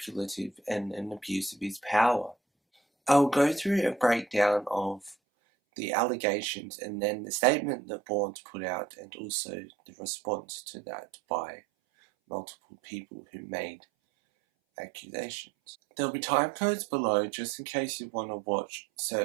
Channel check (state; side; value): drops out; left; at 5.2 s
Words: and an abuse of his power. I'll go through a breakdown of the allegations and then the statement that Børns put out and also the response to that by multiple people who made accusations. There'll be time codes below just in case you want to watch